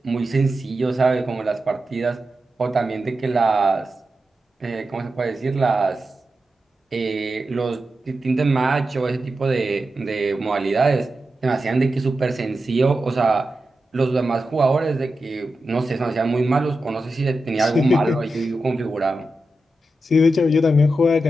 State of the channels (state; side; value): normal; both; correlation 0.90